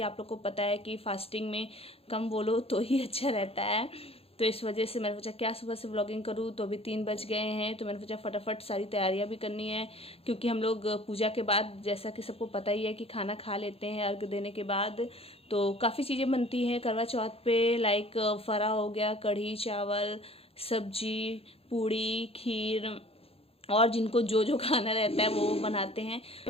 आप लोग को पता है कि फास्टिंग में कम बोलो तो ही अच्छा रहता है, तो इस वजह से मैंने सोचा क्या सुबह से व्लॉगिंग करूँ। तो अभी 3 बज गए हैं, तो मैंने सोचा फटाफट सारी तैयारियां भी करनी है, क्योंकि हम लोग पूजा के बाद, जैसा कि सबको पता ही है, कि खाना खा लेते हैं अर्घ देने के बाद। तो काफ़ी चीज़ें बनती हैं करवा चौथ पे, लाइक फरा हो गया, कढ़ी चावल, सब्जी, पूड़ी, खीर, और जिनको जो जो खाना रहता है वो बनाते हैं।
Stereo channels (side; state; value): right; late; 0.28 ms